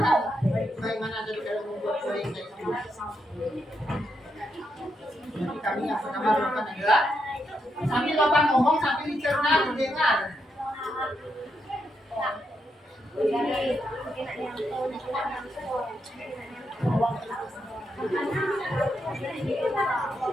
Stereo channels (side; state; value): both; normal; correlation 0.81